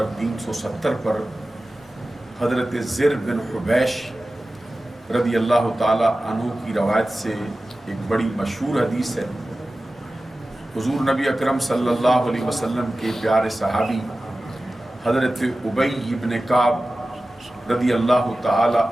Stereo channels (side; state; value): both; normal; correlation 0.95